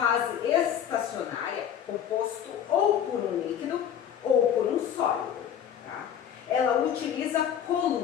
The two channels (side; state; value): right; quieter; 9.2 dB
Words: estacionária composto ou por um líquido ou por um sólido. Tá? Ela utiliza